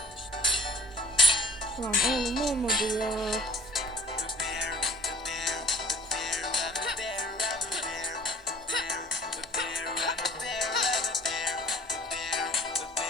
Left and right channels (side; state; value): both; normal; correlation 0.49